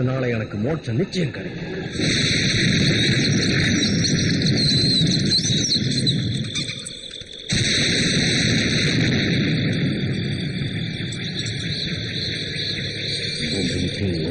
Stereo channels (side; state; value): both; identical; correlation 1.00